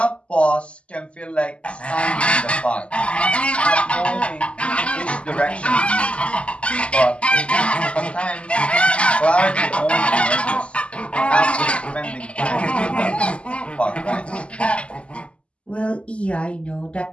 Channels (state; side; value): late; right; 0.056 ms